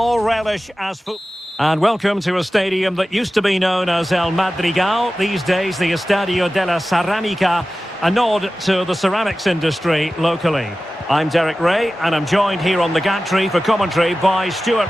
relish as football. And welcome to a stadium that used to be known as El Madrigal, these days the Estadio de la Ceramica, a nod to the ceramics industry locally. I'm Derek Ray, and I'm joined here on the gantry for commentary by Stuart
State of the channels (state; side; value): normal; both; correlation 0.95